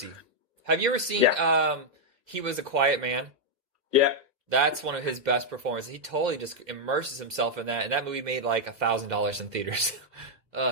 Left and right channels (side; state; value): left; late; 2.0 ms